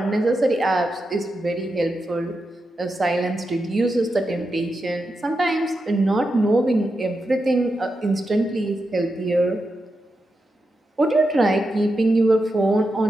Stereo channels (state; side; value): normal; both; correlation 0.88